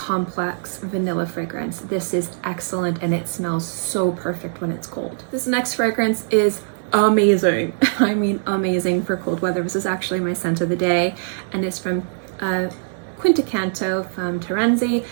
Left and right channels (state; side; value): silent; left; 64 dB below the other